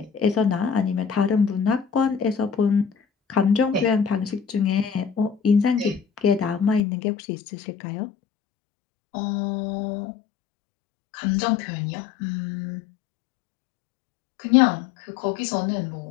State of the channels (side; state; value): right; drops out; at 6.8 s